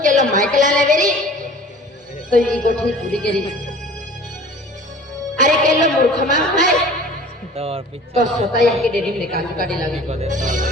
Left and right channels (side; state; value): both; normal; correlation 0.45